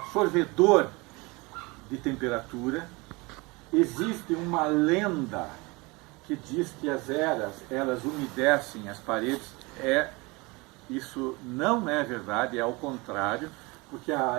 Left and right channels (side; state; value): left; quieter; 25.4 dB